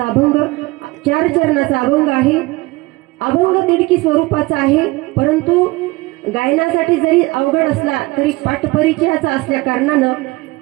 अभंग 4 चरणाचा अभंग आहे. अभंग तिडकी स्वरूपाचा आहे, परंतु गायनासाठी जरी अवघड असला तरी पाठपरिचयाचा असल्या कारणानं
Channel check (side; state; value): left; quieter; 22.1 dB